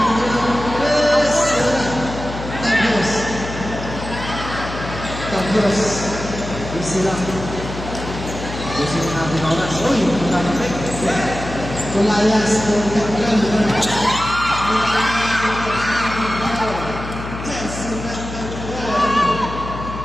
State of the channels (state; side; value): noise; left; hum, 9 dB below the sound